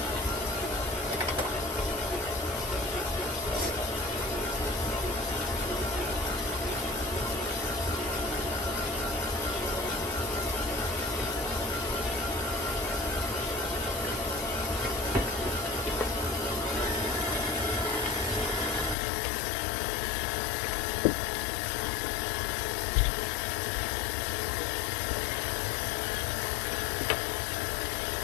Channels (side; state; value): right; drops out; at 18.9 s